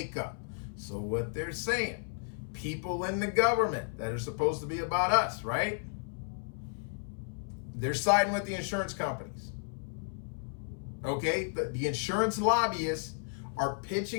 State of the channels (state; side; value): silent; right; 56 dB below the other